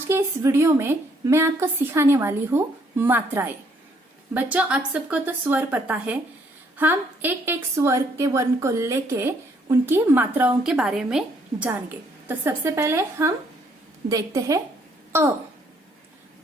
के इस वीडियो में मैं आपको सिखाने वाली हूँ मात्राएं। बच्चों, आप सबको तो स्वर पता है। हम एक एक स्वर के वर्ण को लेके उनकी मात्राओं के बारे में जानेंगे। तो सबसे पहले हम देखते हैं अ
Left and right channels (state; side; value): normal; both; correlation 0.67